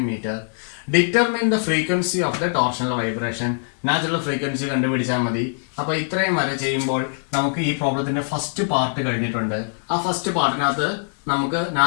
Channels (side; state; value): right; silent; digital silence